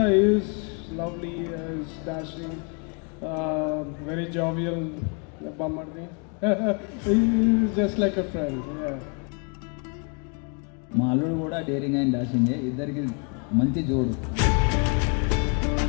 he is lovely, he is dashing, very jovial, Bamardi. He is just like a friend, yeah. మా అల్లుడు కూడా డేరింగ్ అండ్ డాషింగే, ఇద్దరికి మంచి జోడు.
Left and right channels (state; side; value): quieter; right; 36.6 dB